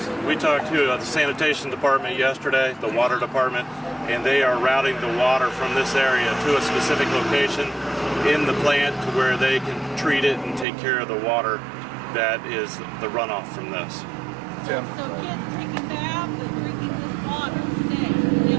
we talked to the sanitation department yesterday, the water department, and they are routing the water from this area to a specific location in the plant to where they can treat it and take care of the water that is the runoff from this. Tim? So kids taking baths and drinking this water today?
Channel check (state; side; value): drops out; left; at 10.7 s